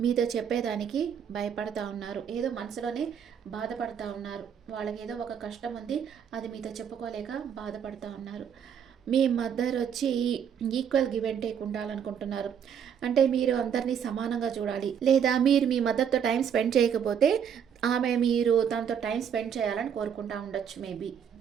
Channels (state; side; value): quieter; left; 8.0 dB